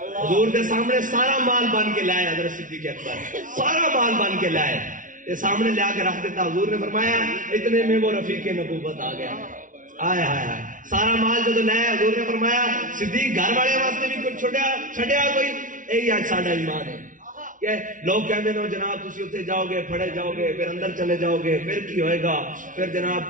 حضور کے سامنے سارا مال بن کے لائے حضرت صدیق اکبر, سارا مال بن کے لائے, یہ سامنے لے کے رکھ دیتا. حضور نے فرمایا اتنے میں وہ رفیق نبوت آ گیا. آئے ہائے ہائے سارا مال جو لائے, حضور نے فرمایا صدیق گھر والے واسطے بھی کچھ چھڈیا کوئی, یہی آج ساڈا ایمان ہے. کہ لوگ کہتے ہیں جناب تسی اتنے جاؤ گے, پھڑے جاؤ گے, پھر اندر چلے جاؤ گے, پھر کی ہوئے گا, پھر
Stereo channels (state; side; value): late; left; 0.38 ms